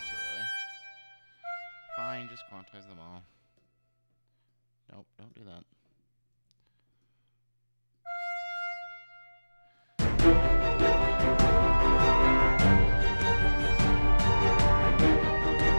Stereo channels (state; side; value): inverted; both; correlation -1.00